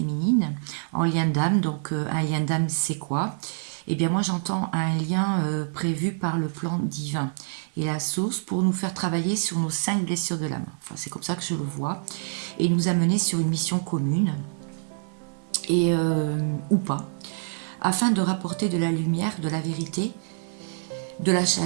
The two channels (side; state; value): left; silent; digital silence